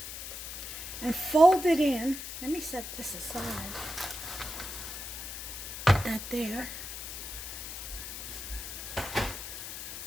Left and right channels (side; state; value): left; noise; hiss, 8 dB below the sound